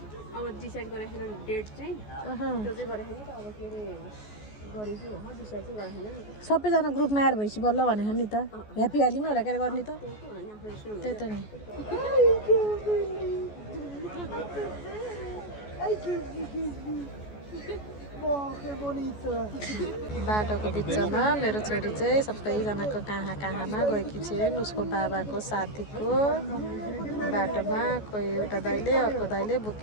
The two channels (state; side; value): late; right; 14 ms